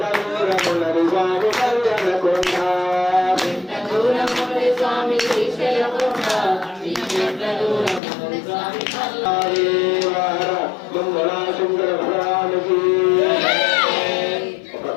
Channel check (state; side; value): drops out; right; at 8.0 s